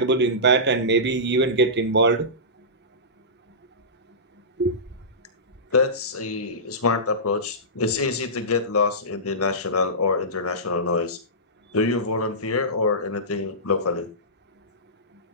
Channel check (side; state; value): both; normal; correlation -0.20